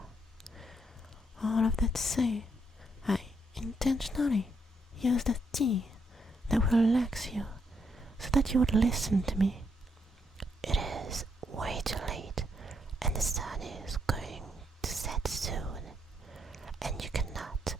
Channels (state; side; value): normal; both; correlation 0.76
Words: All of that to say, I intentionally used a tea that will relax you so that you would listen to me. It is way too late and the sun is going to set soon, and you cannot